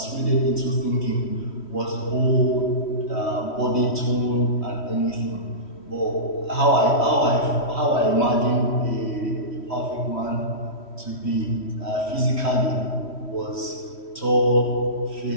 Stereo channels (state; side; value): late; right; 3.1 ms